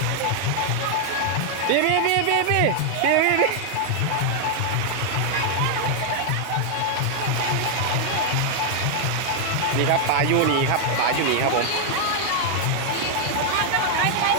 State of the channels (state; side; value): different; both; correlation 0.00